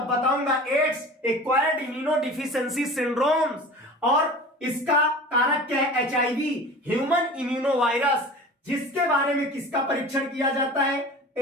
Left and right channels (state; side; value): normal; both; correlation 0.38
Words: बताऊंगा। एड्स एक्वायर्ड इम्यूनोडिफिशियेंसी सिंड्रोम्स, और इसका कारक क्या है? एचआईवी, ह्यूमन इम्यूनोवायरस, जिसके बारे में किसका परीक्षण किया जाता है?